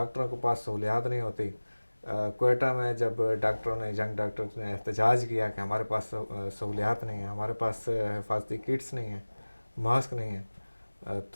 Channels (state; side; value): inverted; both; correlation -1.00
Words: کے پاس سہولیات نہیں ہوتی. کوئٹہ میں جب ڈاکٹروں نے ینگ ڈاکٹرز نے احتجاج کیا کہ ہمارے پاس سہولیات نہیں ہیں، ہمارے پاس حفاظتی کٹس نہیں ہیں، ماسک نہیں ہیں،